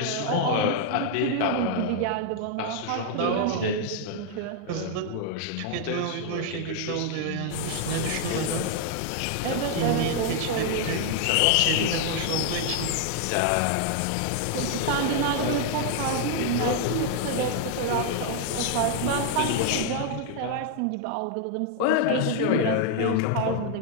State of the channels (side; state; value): both; different; correlation 0.00